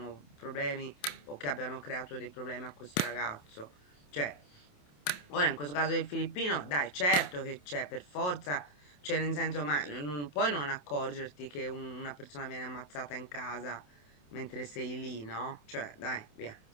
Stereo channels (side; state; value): right; late; 27 ms